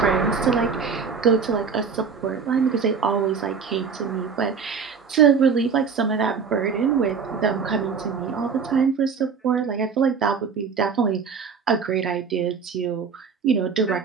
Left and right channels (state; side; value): quieter; left; 5.9 dB